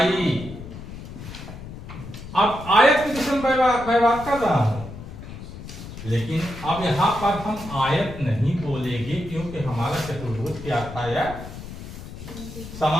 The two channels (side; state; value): left; noise; rumble, 12 dB below the sound